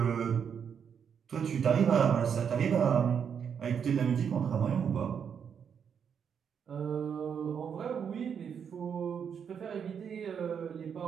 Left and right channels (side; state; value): left; quieter; 7.4 dB